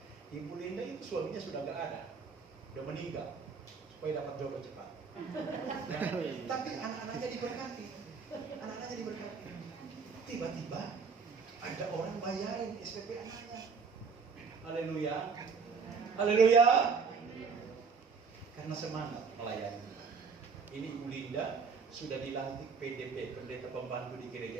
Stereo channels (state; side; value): quieter; left; 5.4 dB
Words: Ibu Linda itu suaminya sudah gak ada, sudah meninggal, supaya dapat jodoh cepat. Tapi anak-anaknya diberkati. Tiba-tiba ada orang bayarin SPP anaknya. Haleluya. Karena semangat melayani. Ini Ibu Linda sudah dilantik PDP, pendeta pembantu di gereja